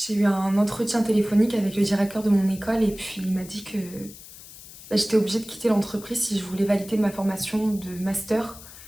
eu un entretien téléphonique avec le directeur de mon école et puis il m'a dit que j'étais obligée de quitter l'entreprise si je voulais valider ma formation de master.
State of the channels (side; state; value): left; noise; hiss, 17 dB below the sound